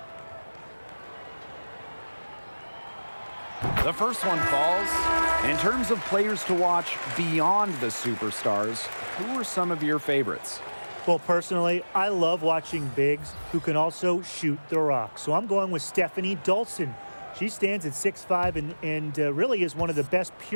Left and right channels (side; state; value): both; inverted; correlation -1.00